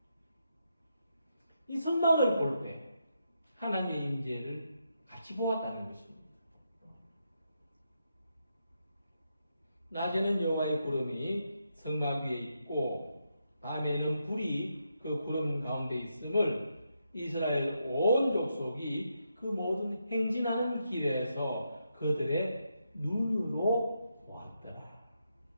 이 성막을 볼 때 하나님의 임재를 같이 보았다는 것입니다. 낮에는 여호와의 구름이 성막 위에 있고 밤에는 불이 그 구름 가운데 있음을 이스라엘 온 족속이 그 모든 행진하는 길에서 그들의 눈으로 보았더라.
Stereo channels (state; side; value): inverted; both; correlation -0.82